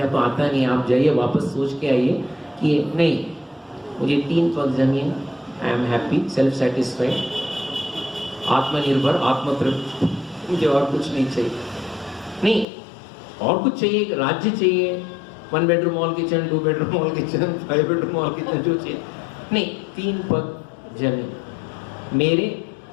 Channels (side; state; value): right; drops out; at 12.7 s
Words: तो आता नहीं। आप जाइए वापस सोच के आइए कि नहीं, मुझे 3 पग जमीन, I am happy, self satisfied, आत्मनिर्भर, आत्मतृप्त, मुझे और कुछ नहीं चाहिए। नहीं, और कुछ चाहिए, राज्य चाहिए, 1 bedroom hall kitchen, 2 bedroom hall kitchen, 5 bedroom hall kitchen, जो चाहिए नहीं, 3 पग जमीन मेरे